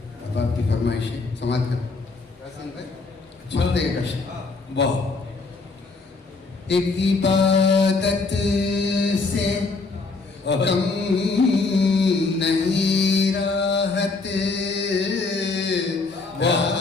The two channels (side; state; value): right; quieter; 3.9 dB